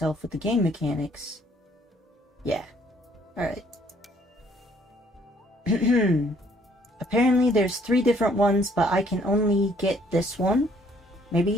with the game mechanics. Yeah. Alright. Apparently there's 3 different ones, but I can only get this one. Maybe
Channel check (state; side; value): normal; both; correlation 0.63